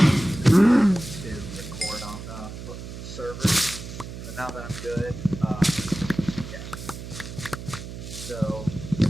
to record on the server. But now that I'm good, yeah. So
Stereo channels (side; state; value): right; noise; hum, 10 dB below the sound